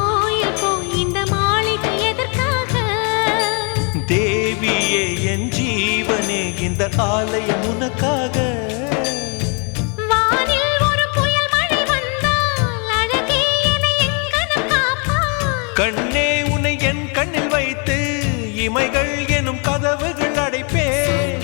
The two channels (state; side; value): quieter; right; 36.5 dB